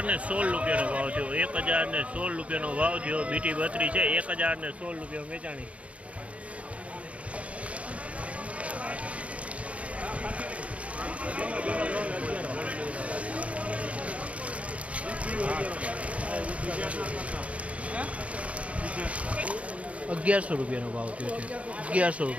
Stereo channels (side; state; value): left; late; 0.064 ms